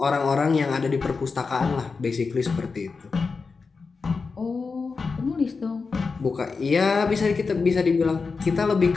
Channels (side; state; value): right; quieter; 4.7 dB